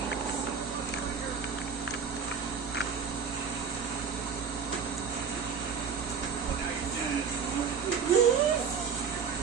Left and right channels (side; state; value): left; quieter; 6.3 dB